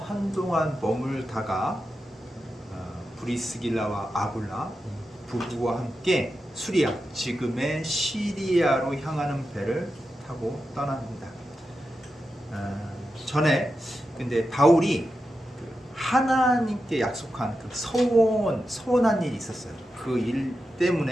한동안 머물다가 브리스길라와 아굴라 부부와 함께 수리아 지금의 시리아로 향하는 배를 타고 떠납니다. 전에 근데 바울이 하나님께 약속한 그 서원한 일이 있었어요. 그 일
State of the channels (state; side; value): normal; both; correlation 0.90